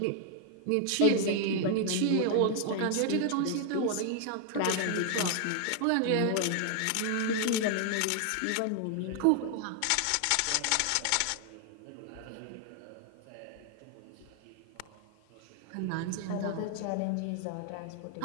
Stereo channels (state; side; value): different; both; correlation 0.00